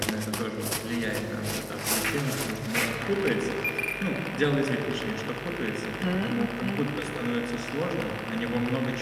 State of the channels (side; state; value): both; identical; correlation 1.00